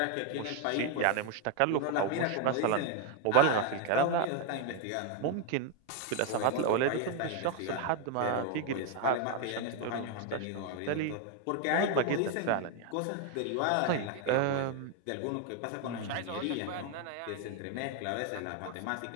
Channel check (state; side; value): different; both; correlation 0.01